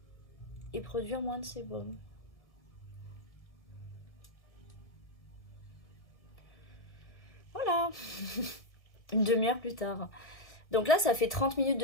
et produire moins de sébum. Voilà. Une demi-heure plus tard. Donc là, ça fait 30 minutes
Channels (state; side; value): late; right; 1.7 ms